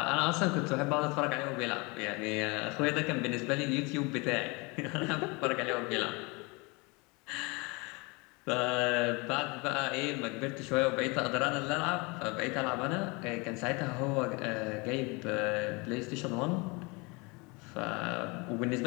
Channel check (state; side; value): quieter; right; 27.6 dB